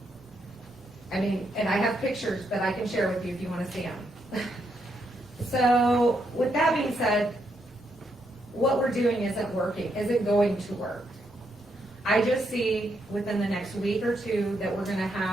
I mean, and I have pictures that I can share with you if you want to see them. So, with that being said, what we're doing isn't working, isn't going to work. I just see within the next week or two that we're gonna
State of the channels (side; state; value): both; normal; correlation 0.78